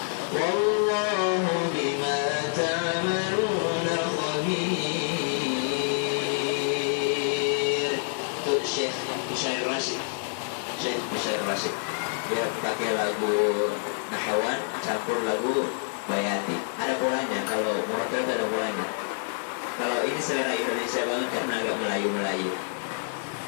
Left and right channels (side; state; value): right; silent; digital silence